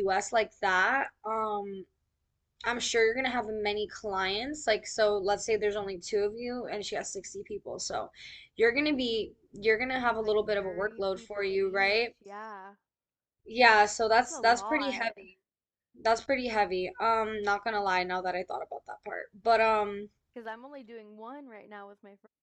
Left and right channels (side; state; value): both; identical; correlation 1.00